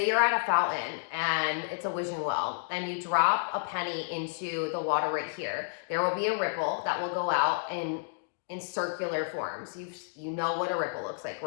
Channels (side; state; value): right; silent; digital silence